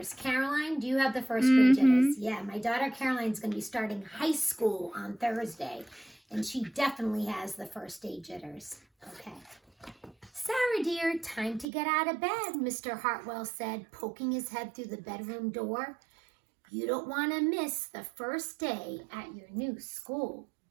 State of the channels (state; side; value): drops out; left; at 11.7 s